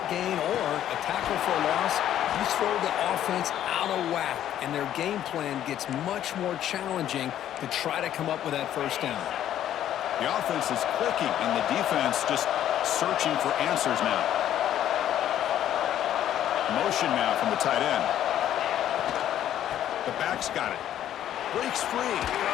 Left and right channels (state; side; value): quieter; right; 11.3 dB